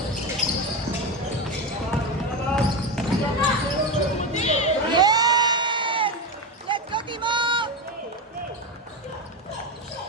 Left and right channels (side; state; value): both; normal; correlation 0.17